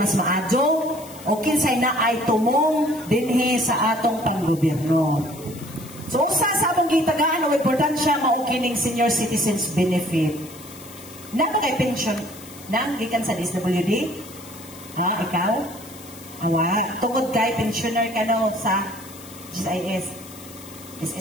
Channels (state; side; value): noise; left; hiss, 18 dB below the sound